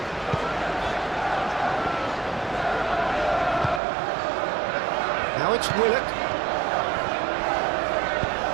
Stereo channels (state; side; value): drops out; left; at 3.8 s